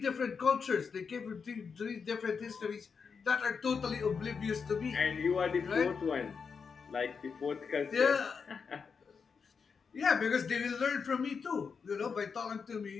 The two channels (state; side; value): quieter; right; 5.7 dB